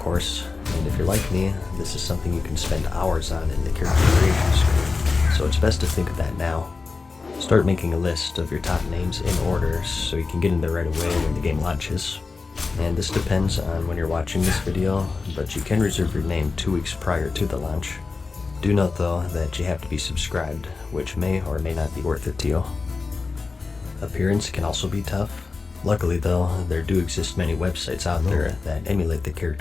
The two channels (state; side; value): quieter; right; 4.2 dB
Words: and if you're like me, this is something you can spend hours on in the character creation screen, so it's best to think of that now. Start making a list of your top names in order so you can get in there right away when the game launches. And this depends on when you're watching this video, but you can reserve your name 2 weeks prior to the launch. Do note though that you have to be subscribed, which may or may not be worth it to you. Appearance can also be tough. Luckily though, there do exist many websites out there that emulate the